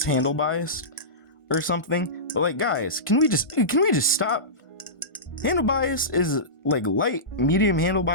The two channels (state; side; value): late; right; 1.5 ms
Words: handle biased or something. But like, guys, can we just stop? Handle bias is like light, medium handle